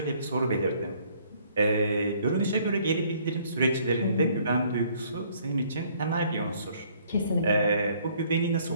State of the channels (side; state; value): both; inverted; correlation -0.62